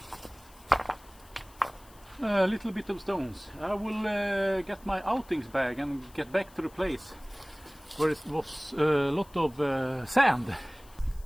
A little bit of stones. I will get my outings bag and get back to the place where it was a lot of sand.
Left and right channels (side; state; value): left; noise; hiss, 25 dB below the sound